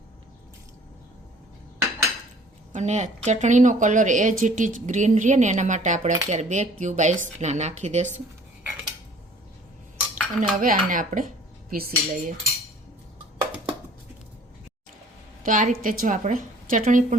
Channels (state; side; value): normal; both; correlation 0.53